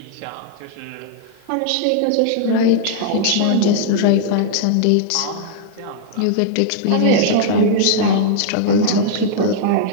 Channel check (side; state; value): both; different; correlation -0.01